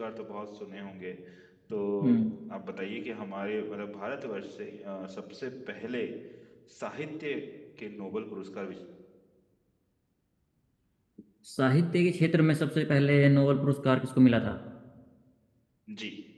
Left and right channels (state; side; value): identical; both; correlation 1.00